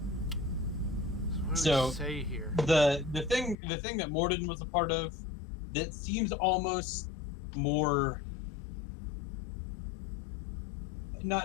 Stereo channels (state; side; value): drops out; right; at 3.6 s